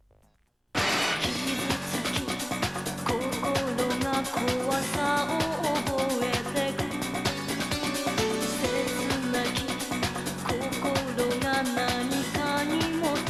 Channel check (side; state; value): both; identical; correlation 1.00